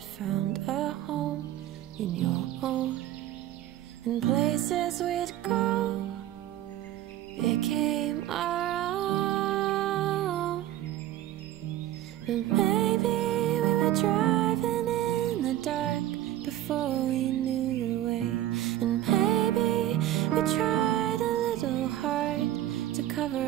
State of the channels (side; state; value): left; quieter; 13.4 dB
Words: found a home in your own. And places we'd go became our own. But maybe we were driving in the dark before we knew the way. And maybe we tried a little hard to cover